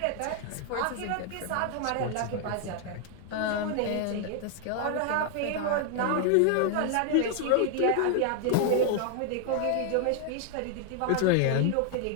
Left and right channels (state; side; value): different; both; correlation 0.00